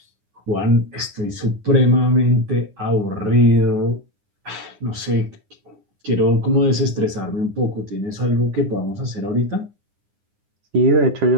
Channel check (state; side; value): late; left; 9.8 ms